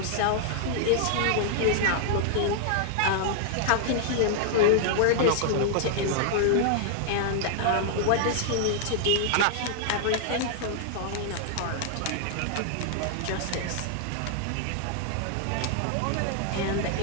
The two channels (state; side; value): different; both; correlation -0.01